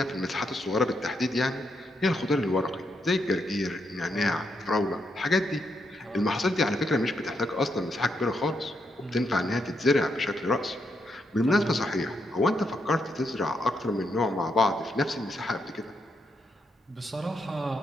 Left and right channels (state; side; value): normal; both; correlation 0.80